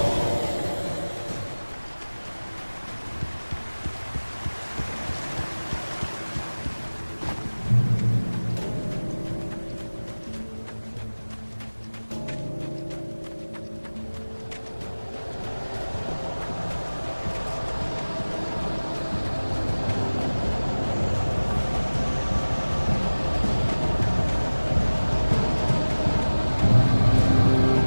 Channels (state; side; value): inverted; both; correlation -1.00